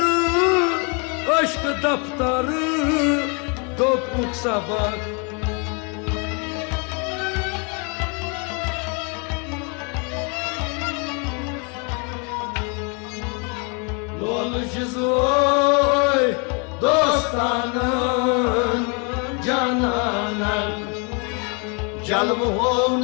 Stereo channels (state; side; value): quieter; right; 35.1 dB